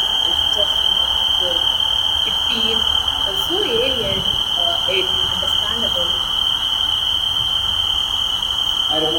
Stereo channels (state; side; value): identical; both; correlation 1.00